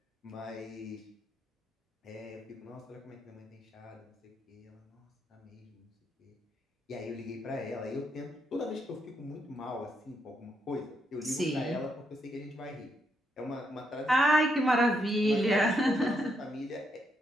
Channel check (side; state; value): both; normal; correlation 0.78